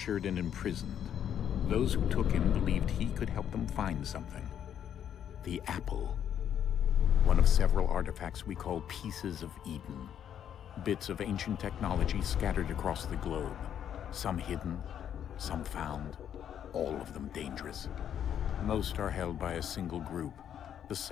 and imprisoned. Those who took him believed he could help them find something. The apple. One of several artifacts we call pieces of Eden. Bits of ancient technology scattered across the globe. Some hidden, some found, all of them dangerous. Most are held by a single group, the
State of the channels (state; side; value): quieter; right; 9.4 dB